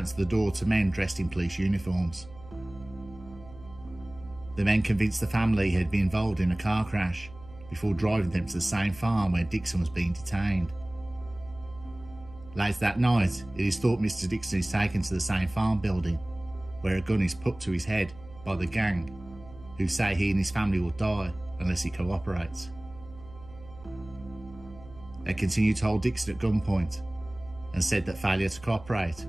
the door to men dressed in police uniforms. The men convinced the family he had been involved in a car crash before driving them to the same farm where Dixon was being detained. Later that night, it is thought Mr. Dixon is taken to the same farm building, where a gun is put to his head by the gang, who say he and his family will die unless he cooperates. They continue to hold Dixon at gunpoint and said that failure to cooperate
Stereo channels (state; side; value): noise; right; hum, 19 dB below the sound